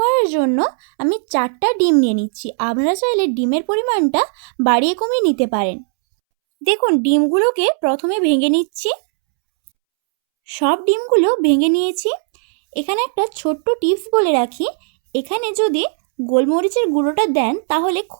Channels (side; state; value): left; silent; 68 dB below the other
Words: জন্য আমি 4টা ডিম নিয়ে নিচ্ছি। আপনারা চাইলে ডিমের পরিমাণটা বাড়িয়ে কমিয়ে নিতে পারেন। দেখুন, ডিমগুলোকে প্রথমে ভেঙে নিচ্ছি। সব ডিমগুলো ভেঙে নিয়েছি। এখানে একটা ছোট্ট টিপস বলে রাখি, এখানে যদি গোলমরিচের গুঁড়োটা দেন তাহলে